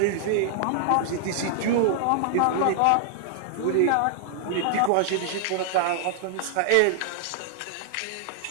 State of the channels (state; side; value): different; both; correlation -0.01